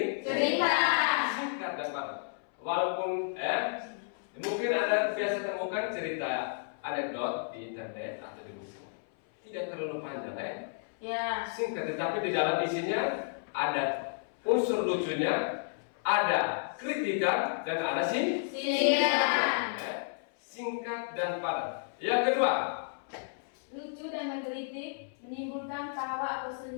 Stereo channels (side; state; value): right; silent; 57 dB below the other